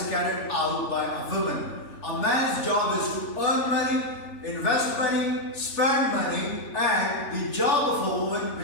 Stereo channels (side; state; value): right; late; 3.4 ms